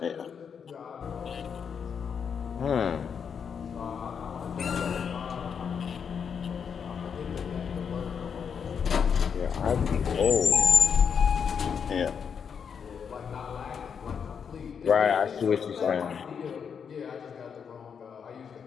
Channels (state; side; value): quieter; right; 6.9 dB